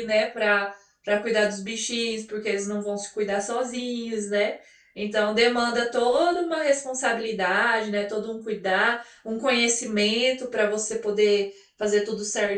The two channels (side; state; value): both; identical; correlation 1.00